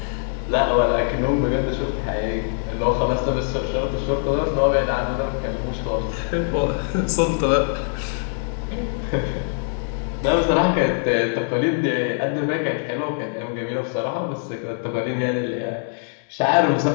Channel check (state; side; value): silent; right; digital silence